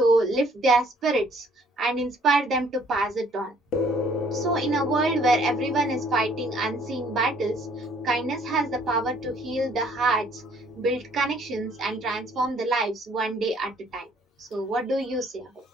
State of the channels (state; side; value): normal; both; correlation 0.60